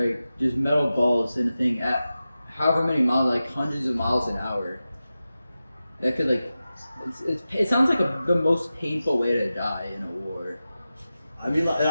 just metal balls in a thing at however many miles, hundreds of miles an hour. That could it sounds like the most painful way to die in a war. I mean,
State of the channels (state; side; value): inverted; both; correlation -0.93